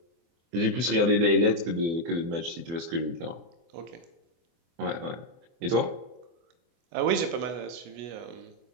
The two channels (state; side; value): late; left; 24 ms